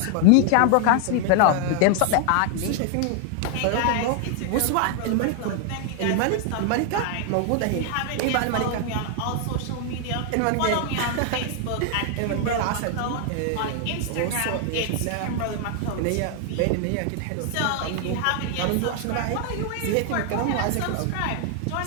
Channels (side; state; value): both; different; correlation 0.00